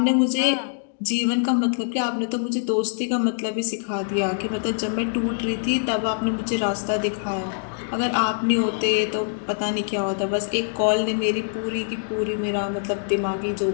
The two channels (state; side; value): silent; right; digital silence